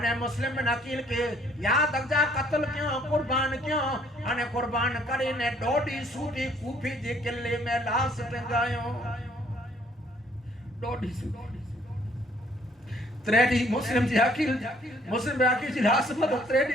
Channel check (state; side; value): normal; both; correlation 0.62